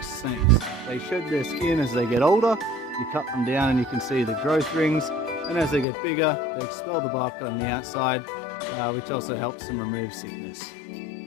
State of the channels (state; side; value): drops out; right; at 5.9 s